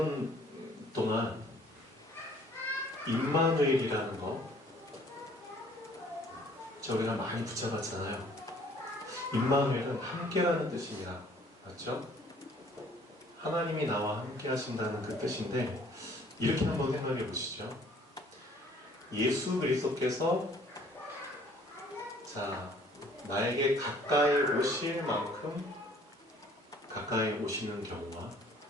동안 임마누엘이라는 거 저희가 많이 붙잡았잖아요. 임마누엘은 함께라는 뜻입니다. 맞죠? 하나님이 나와 함께 하신다는 그 뜻인데, 이렇게 한번 생각해 보시죠. 예수 그리스도께서 나에게 가까이 오실 만큼 가까이 오시는 경우와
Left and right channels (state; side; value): normal; both; correlation 0.57